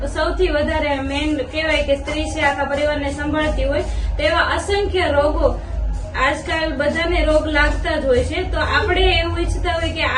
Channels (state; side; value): identical; both; correlation 1.00